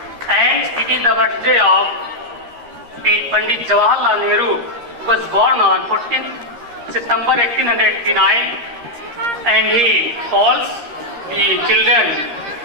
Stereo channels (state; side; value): late; left; 13 ms